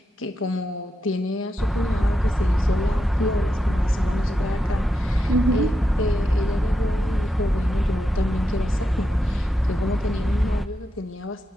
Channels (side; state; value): both; normal; correlation 0.86